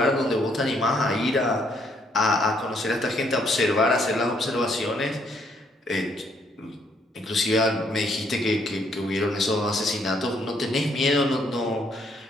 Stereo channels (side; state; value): both; normal; correlation 0.69